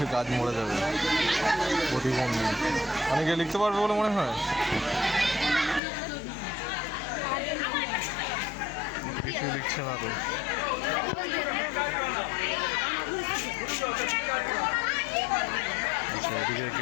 গাছ মরে যাবে প্রতিবন্ধী। অনেকে লিখতে পারবে বলে মনে হয়। কিছু লিখছে না তো। আচ্ছা, এদিকে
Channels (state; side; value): drops out; right; at 5.8 s